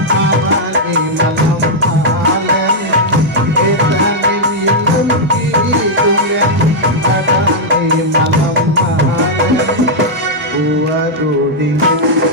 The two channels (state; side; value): normal; both; correlation -0.05